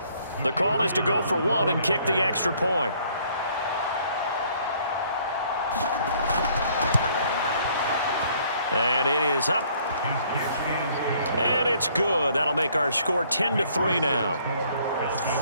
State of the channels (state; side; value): inverted; both; correlation -0.62